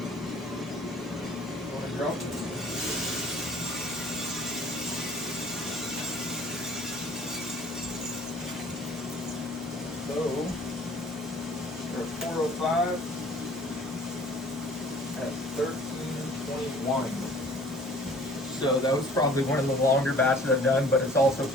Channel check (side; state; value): both; normal; correlation 0.52